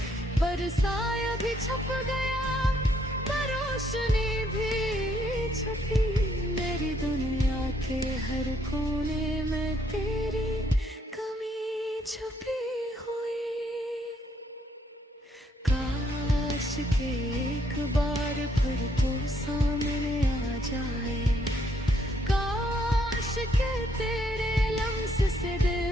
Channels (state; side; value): normal; both; correlation 0.70